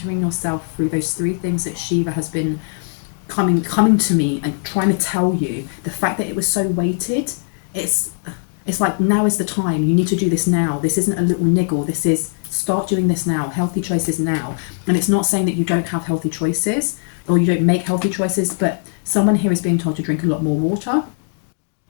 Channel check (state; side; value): silent; right; 66 dB below the other